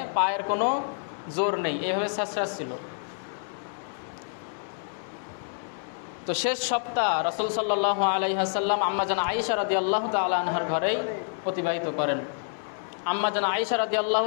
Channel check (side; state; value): right; silent; 60 dB below the other